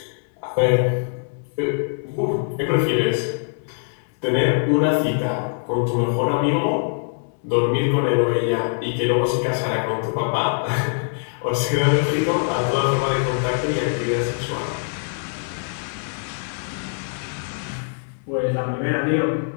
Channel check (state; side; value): silent; right; 64 dB below the other